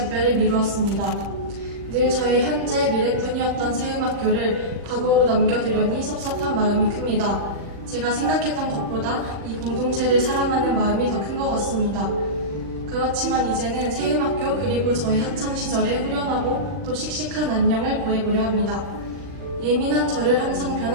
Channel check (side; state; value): left; late; 40 ms